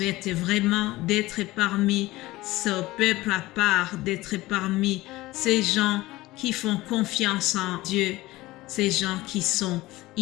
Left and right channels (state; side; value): quieter; right; 18.7 dB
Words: vraiment d'être parmi ce peuple à part, d'être parmi ces gens qui font confiance en Dieu, ces gens qui sont